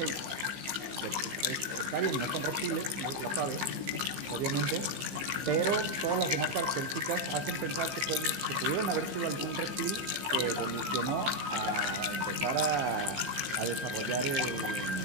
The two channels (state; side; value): late; left; 15 ms